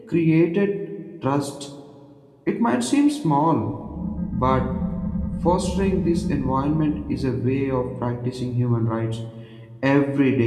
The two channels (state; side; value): identical; both; correlation 1.00